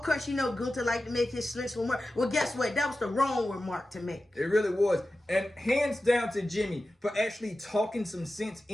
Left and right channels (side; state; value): both; normal; correlation 0.94